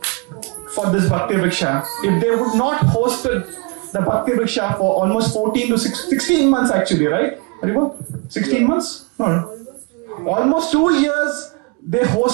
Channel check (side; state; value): left; quieter; 31.1 dB